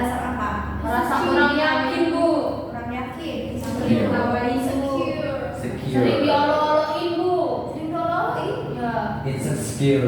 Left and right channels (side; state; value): both; identical; correlation 1.00